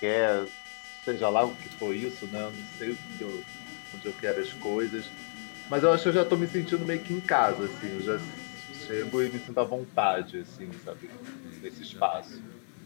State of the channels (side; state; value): right; silent; 57 dB below the other